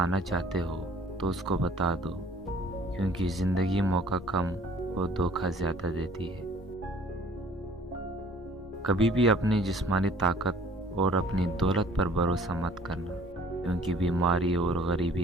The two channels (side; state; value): both; normal; correlation 0.54